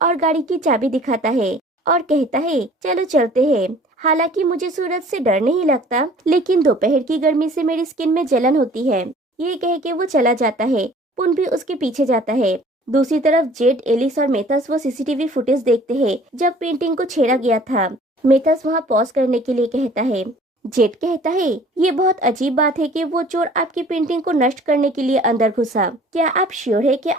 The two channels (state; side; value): normal; both; correlation 0.51